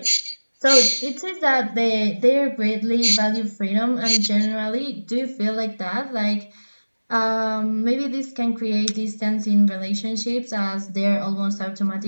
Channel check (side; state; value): both; inverted; correlation -1.00